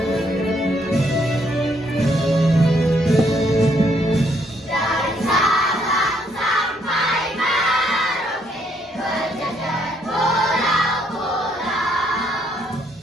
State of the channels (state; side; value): normal; both; correlation 0.71